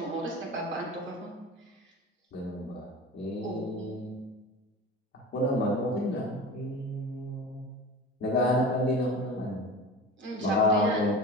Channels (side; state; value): both; normal; correlation 0.33